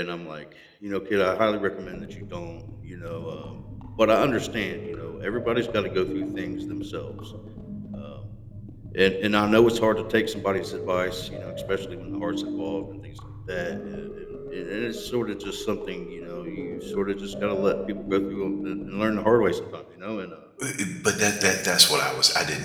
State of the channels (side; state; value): both; identical; correlation 1.00